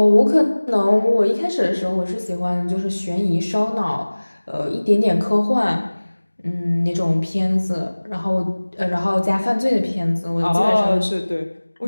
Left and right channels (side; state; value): both; inverted; correlation -1.00